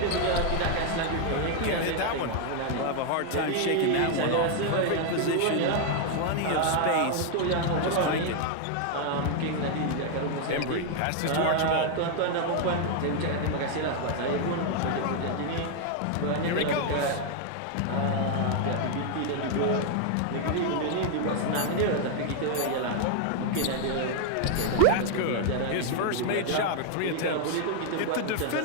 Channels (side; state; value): both; different; correlation 0.00